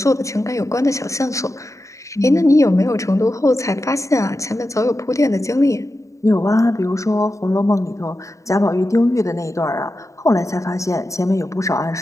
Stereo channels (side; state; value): right; late; 0.15 ms